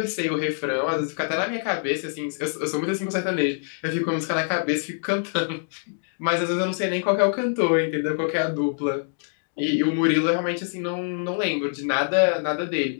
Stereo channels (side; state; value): right; silent; digital silence